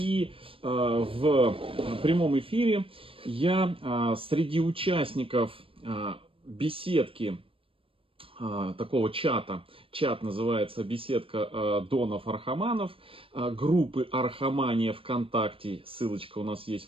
в прямом эфире я среди участников беседки, такого чата, чат называется «Беседка Донов-Архаманов», группы Архамания ВКонтакте, ссылочка у нас есть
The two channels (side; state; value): left; late; 0.26 ms